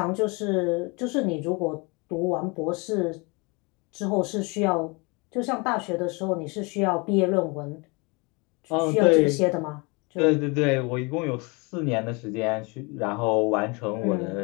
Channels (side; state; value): right; quieter; 29.0 dB